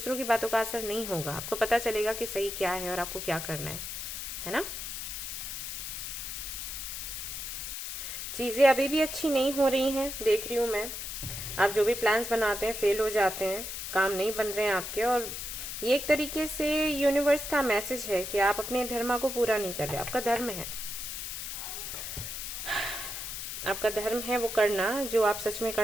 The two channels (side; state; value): left; noise; hiss, 6 dB below the sound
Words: की बातों का असर नहीं होगा, आपको पता चलेगा कि सही क्या है और आपको क्या करना है ना। चीजें अभी भी अच्छी नहीं हो रही हैं, देख रही हूं मैं। आप जो भी प्लान्स बनाते हैं फेल हो जाते हैं, काम नहीं बन रहे हैं आपके, और ये एक तरीके से यूनिवर्स का मैसेज है कि आप अपने धर्म को पूरा नहीं कर रहे। आपका धर्म है, आपका धर्म है वो करना जो आप सच में